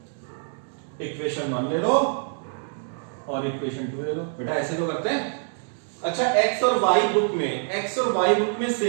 Equation 1 ले लो और इक्वेशन 2 ले लो, बेटा ऐसे तो करते हैं। अच्छा x और y बुक में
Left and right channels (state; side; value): silent; left; digital silence